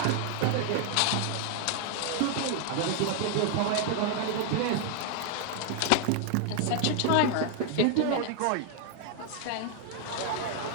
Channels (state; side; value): different; both; correlation 0.00